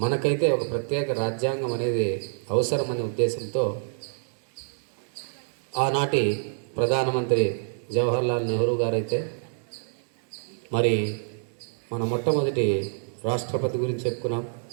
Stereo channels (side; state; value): left; silent; digital silence